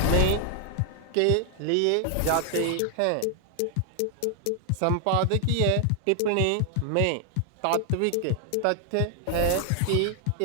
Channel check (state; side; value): different; both; correlation 0.00